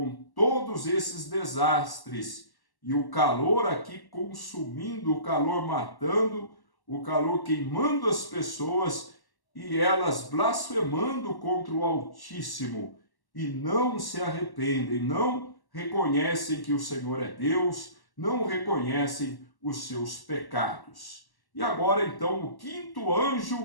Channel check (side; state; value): right; late; 1.1 ms